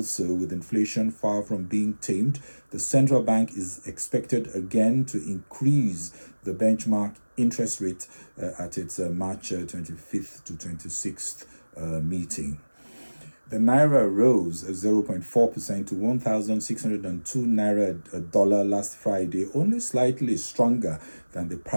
with inflation far from being tamed, the central bank is expected again to increase the benchmark interest rate at its March 25th to 26th meeting. The Naira rose 0.4% to 1,602 Naira a dollar last Friday, only slightly stronger than the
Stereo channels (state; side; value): inverted; both; correlation -1.00